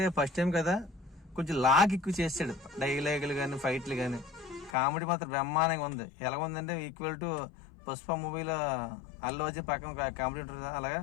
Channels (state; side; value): drops out; right; at 4.8 s